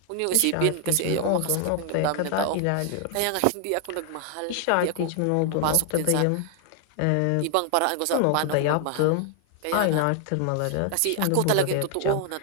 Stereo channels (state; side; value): different; both; correlation 0.00